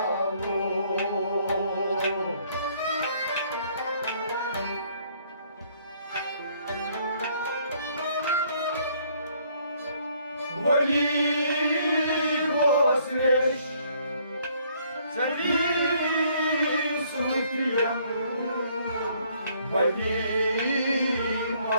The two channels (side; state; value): both; inverted; correlation -0.64